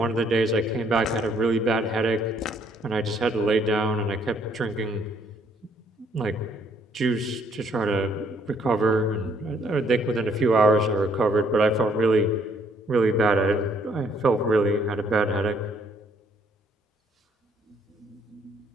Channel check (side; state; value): both; normal; correlation 0.66